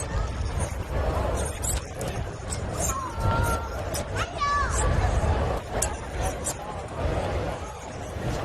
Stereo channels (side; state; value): both; identical; correlation 1.00